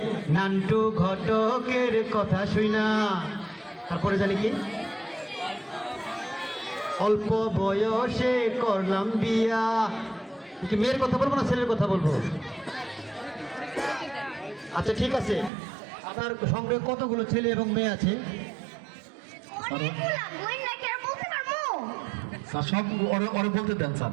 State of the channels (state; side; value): drops out; left; at 15.5 s